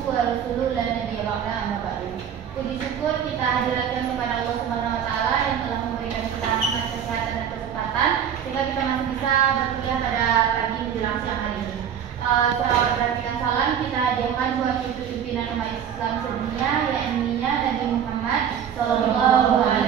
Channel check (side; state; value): left; quieter; 8.7 dB